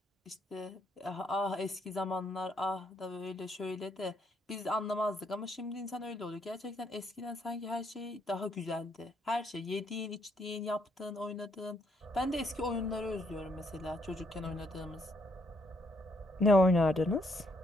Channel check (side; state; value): both; normal; correlation 0.72